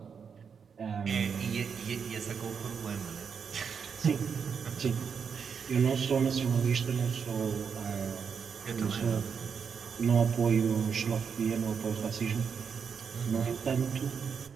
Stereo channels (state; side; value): quieter; left; 6.5 dB